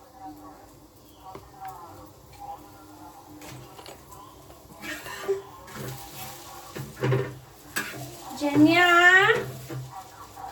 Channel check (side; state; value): both; identical; correlation 1.00